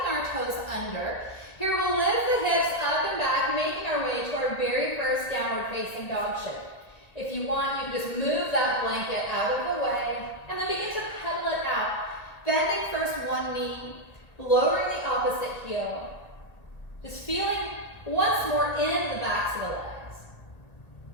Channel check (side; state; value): right; late; 1.9 ms